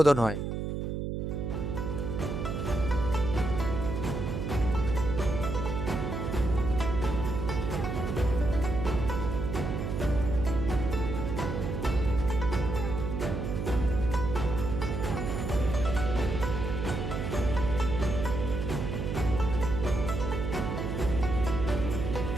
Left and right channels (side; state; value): right; noise; hum, 3 dB below the sound